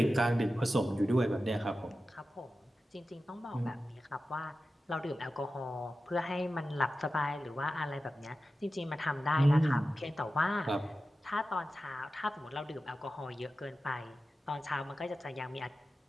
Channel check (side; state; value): both; normal; correlation 0.93